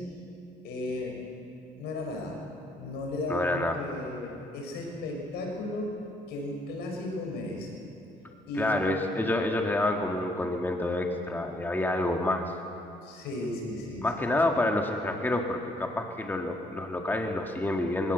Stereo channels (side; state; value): both; normal; correlation 0.69